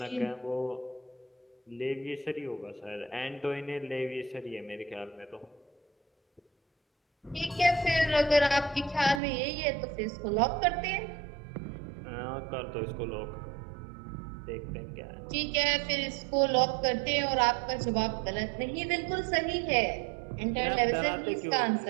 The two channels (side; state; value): left; drops out; at 9.2 s